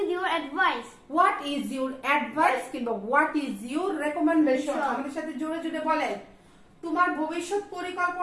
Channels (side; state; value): both; identical; correlation 1.00